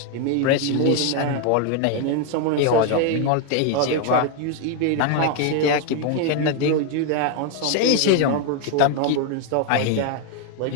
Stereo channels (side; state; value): both; different; correlation 0.01